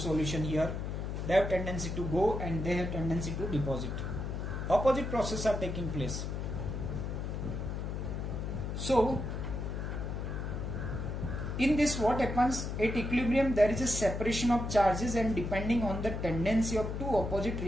here. They have tendency to go and they have tendency to deposit. Opposite processes are taking place. So in this what happens, at equilibrium there is a separation of charges and depending on the tendency of two opposite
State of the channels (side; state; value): left; noise; hum, 4 dB below the sound